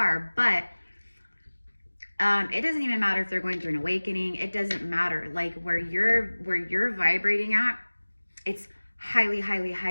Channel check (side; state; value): both; inverted; correlation -1.00